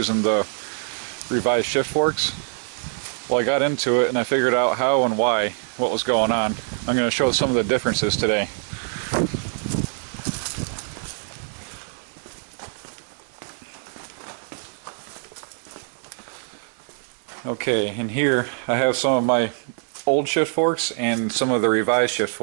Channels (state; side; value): silent; left; 63 dB below the other